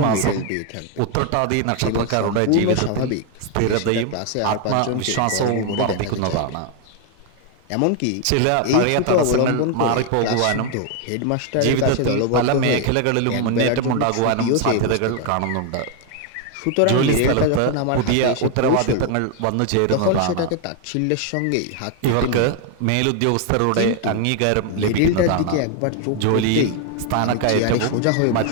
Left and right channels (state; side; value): different; both; correlation 0.01